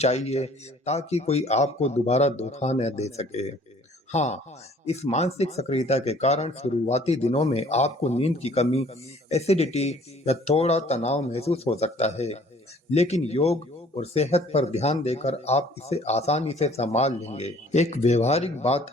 ताकि कोई आपको दोबारा धोखा न दे सके। हाँ, इस मानसिक सक्रियता के कारण शुरुआती दिनों में आपको नींद की कमी, एसिडिटी या थोड़ा तनाव महसूस हो सकता है, लेकिन योग और सेहत पर ध्यान देकर आप इसे आसानी से संभाल लेंगे। एक व्यवहारिक बात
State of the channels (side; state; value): both; normal; correlation 0.55